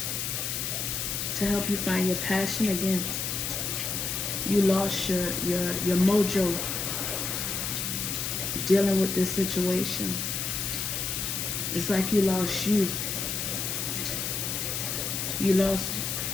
To help you find your passion again. You lost your mojo dealing with this situation. It's like you lost you. You lost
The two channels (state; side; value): noise; left; hiss, 2 dB below the sound